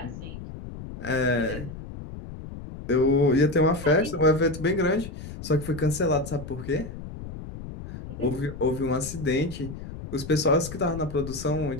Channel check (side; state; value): left; noise; rumble, 11 dB below the sound